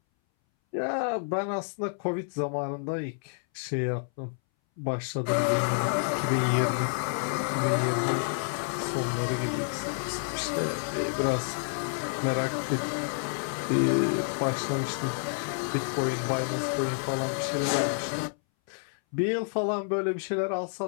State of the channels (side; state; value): right; silent; 59 dB below the other